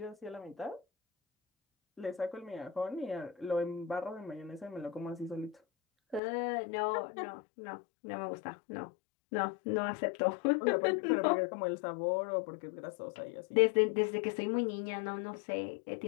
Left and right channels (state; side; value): drops out; right; at 6.2 s